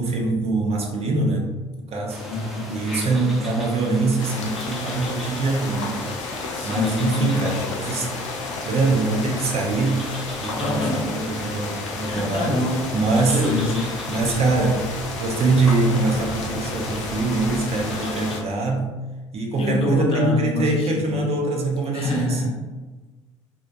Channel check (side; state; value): both; normal; correlation 0.56